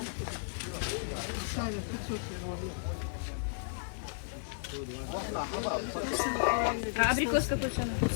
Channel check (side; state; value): right; silent; digital silence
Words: Шаля 500 рублей. А абрикос какой цены?